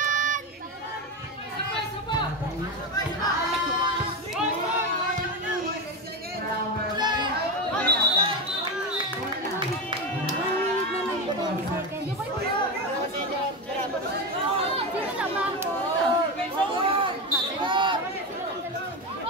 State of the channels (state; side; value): normal; both; correlation 0.16